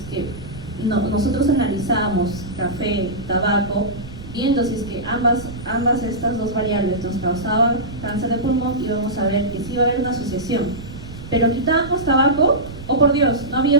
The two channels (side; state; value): right; noise; rumble, 13 dB below the sound